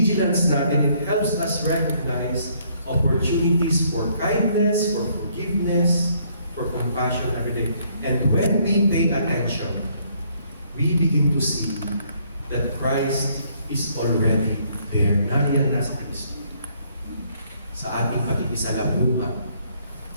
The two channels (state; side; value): inverted; both; correlation -0.67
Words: natin, it helps us recognize opportunities for kindness, for forgiveness, for compassion every day. And when we pay attention, we begin to see that Christ is already there. Nariyan na sa Kristo. Sa ating pag-ibisalamuha,